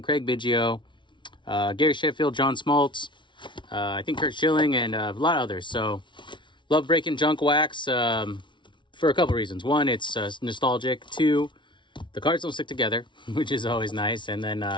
Biggio, Gary Sheffield, John Smoltz, I think Curt Schilling, and a lot of others. So, love breaking junk wax for a couple reasons. One, it's nostalgic. Two, the cards don't stick together, which is always nice. And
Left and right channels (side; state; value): right; late; 0.24 ms